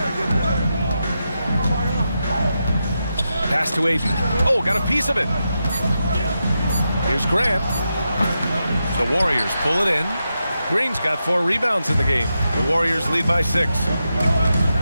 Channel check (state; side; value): inverted; both; correlation -0.87